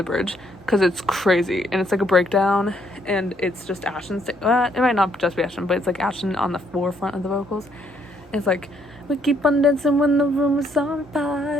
bridge, because it's crazy, and it's like a breakdown, and it's just Ashton. It might not just be Ashton, but it's like Ashton on the forefront of the vocals. It's like, we keep on dancing when the room is on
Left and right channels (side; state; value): both; normal; correlation 0.69